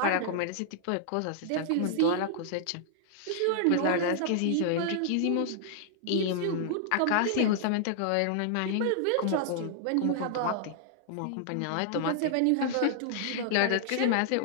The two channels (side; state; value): both; different; correlation -0.01